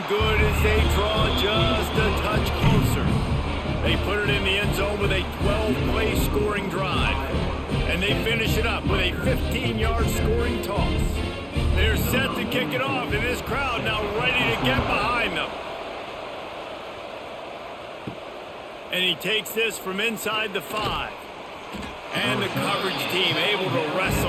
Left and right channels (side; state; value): both; identical; correlation 1.00